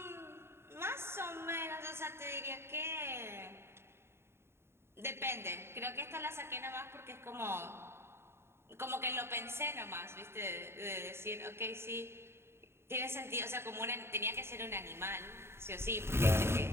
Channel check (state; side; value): late; left; 0.12 ms